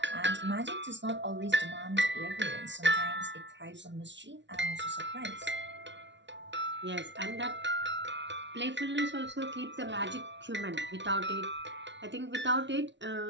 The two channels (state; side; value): late; left; 0.52 ms